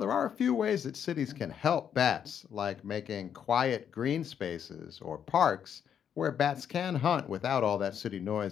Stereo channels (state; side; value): quieter; right; 8.5 dB